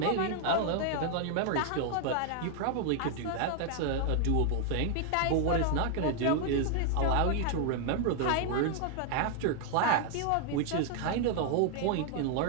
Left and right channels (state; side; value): different; both; correlation 0.00